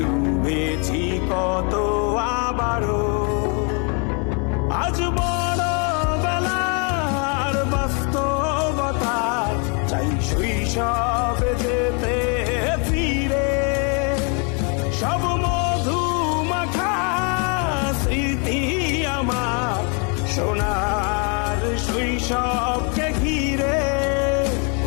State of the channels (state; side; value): quieter; right; 36.4 dB